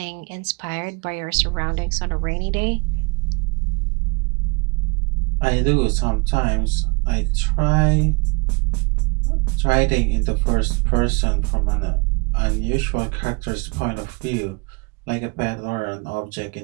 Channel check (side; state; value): left; quieter; 30.8 dB